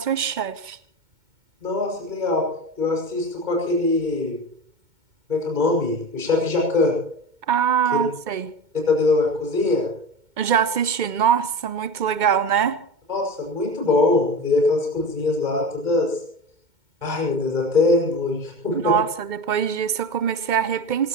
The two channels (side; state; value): left; late; 2.2 ms